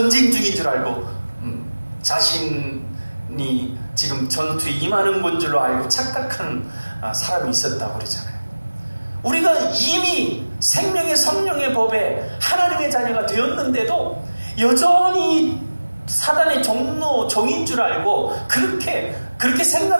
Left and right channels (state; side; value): inverted; both; correlation -1.00